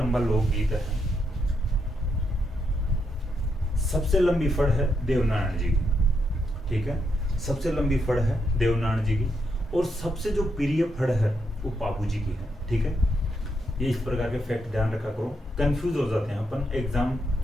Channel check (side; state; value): both; normal; correlation 0.80